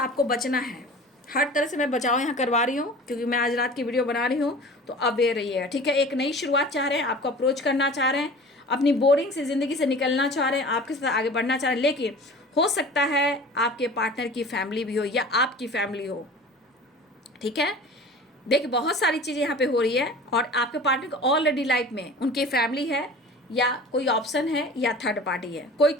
आपको बचना है। हर तरह से मैं बचाव यहाँ करवा रही हूँ, क्योंकि मैं आज रात की वीडियो बना रही हूँ। तो अवेयर रहिएगा, ठीक है। एक नई शुरुआत चाह रहे हैं, आपको अप्रोच करना चाह रहे हैं, अपनी बोरिंग से ज़िंदगी से निकलना चाह रहे हैं, आपके साथ आगे बढ़ना चाह रहे हैं। लेकिन हो सकता है आपके पार्टनर की फैमिली भी हो या आपकी फैमिली हो, ठीक है। देखिए, बहुत सारी चीज़ें यहाँ पे हो रही है, और आपके पार्टनर को ऑलरेडी लाइफ में उनकी फैमिली है, या कोई ऑप्शन है, या थर्ड पार्टी है, कोई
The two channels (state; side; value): normal; both; correlation 0.40